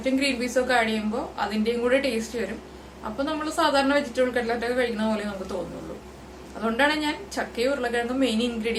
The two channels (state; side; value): identical; both; correlation 1.00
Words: ഗ്രീൻ പീസും ഒക്കെ ആഡ് ചെയ്യുമ്പോൾ അതിന്റെയും കൂടെ ടേസ്റ്റ് വരും. അപ്പൊ നമ്മൾ സാധാരണ വെജിറ്റബിൾ കട്ട്ലറ്റ് ഒക്കെ കഴിക്കുന്ന പോലെ നമുക്ക് തോന്നുള്ളൂ. അതുകൊണ്ടാണ് ഞാൻ ചക്കയും ഉരുളക്കിഴങ്ങും മെയിൻ